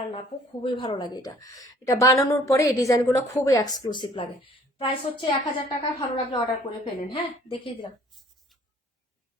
না আপু, খুবই ভালো লাগে এটা। এটা বানানোর পরে এই ডিজাইনগুলো খুবই এক্সক্লুসিভ লাগে। প্রাইস হচ্ছে 1000 টাকা। ভালো লাগলে অর্ডার করে ফেলেন। হ্যাঁ, দেখিয়ে দিলাম।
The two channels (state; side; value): normal; both; correlation 0.56